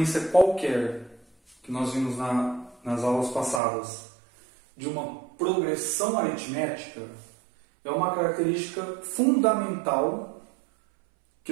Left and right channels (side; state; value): left; drops out; at 3.6 s